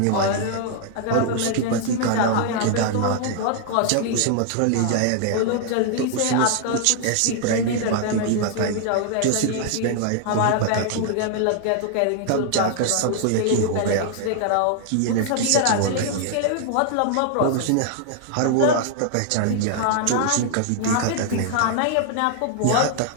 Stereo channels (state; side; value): different; both; correlation 0.00